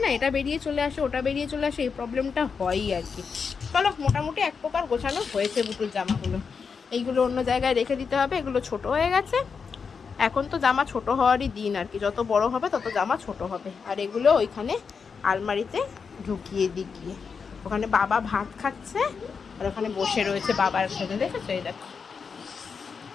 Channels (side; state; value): right; quieter; 5.7 dB